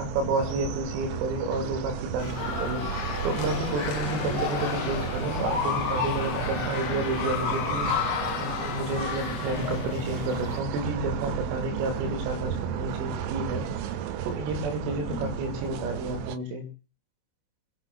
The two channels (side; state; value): left; late; 27 ms